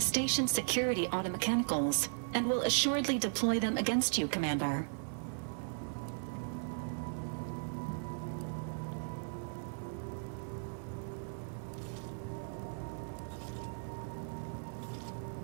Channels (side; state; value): left; silent; digital silence